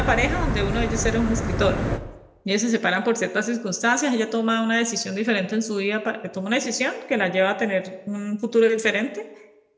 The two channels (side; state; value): both; identical; correlation 1.00